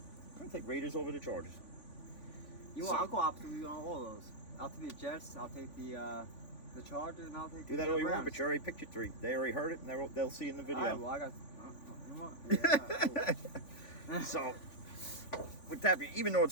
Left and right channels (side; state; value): right; late; 3.5 ms